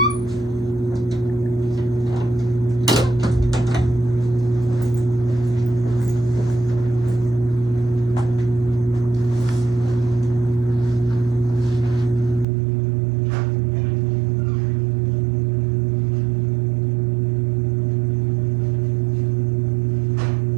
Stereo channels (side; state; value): left; drops out; at 12.5 s